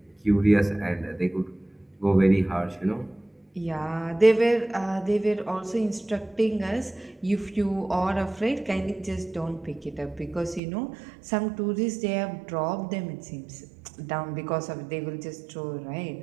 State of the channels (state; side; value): drops out; left; at 10.6 s